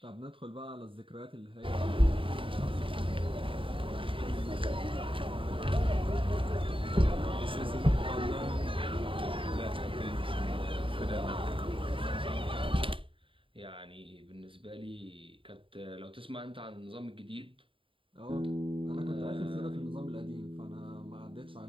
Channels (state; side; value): late; left; 0.25 ms